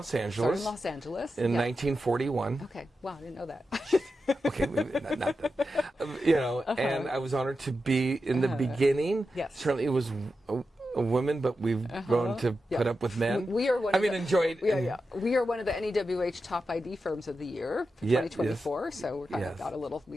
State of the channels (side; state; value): both; normal; correlation 0.90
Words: Angeles. In 1941. Okay. Wow, I didn't know that. Okay, not that. And I was honored to be in the beginning. Yes. Certainly it was a woman, but we've grown to put up with men. We are one. enjoyed. We are one of the NEWH top ID firms of the year, 2024. Yes. So we got a